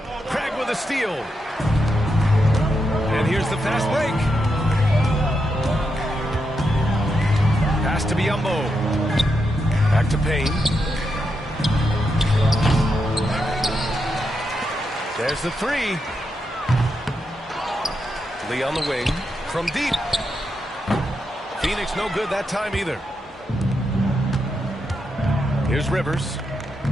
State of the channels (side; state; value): both; normal; correlation 0.84